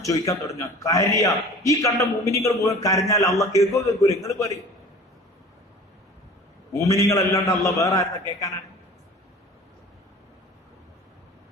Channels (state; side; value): normal; both; correlation 0.42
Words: ചോദിക്കാൻ തുടങ്ങുക, കരയ. ഈ കണ്ട മോമിനികൾ മുഴുവൻ കരഞ്ഞാൽ അള്ളാഹ് കേൾക്കൂല. നിങ്ങൾ പറയും മോമിനികൾ അല്ലാണ്ട് അള്ളാഹ് വേറെ ആരെന്ന് കേൾക്കാനാണ്?